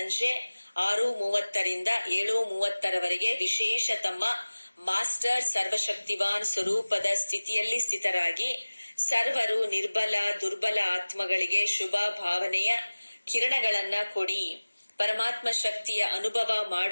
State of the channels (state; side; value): inverted; both; correlation -1.00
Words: 6:30ರಿಂದ 7:30ರವರೆಗೆ ವಿಶೇಷ ತಮ್ಮ ಮಾಸ್ಟರ್ ಸರ್ವಶಕ್ತಿವಾನ್ ಸ್ವರೂಪದ ಸ್ಥಿತಿಯಲ್ಲಿ ಸ್ಥಿತರಾಗಿ ಸರ್ವರು ನಿರ್ಬಲ ದುರ್ಬಲ ಆತ್ಮಗಳಿಗೆ ಶುಭ ಭಾವನೆಯ ಕಿರಣಗಳನ್ನ ಕೊಡಿ. ಪರಮಾತ್ಮ ಶಕ್ತಿಯ ಅನುಭವ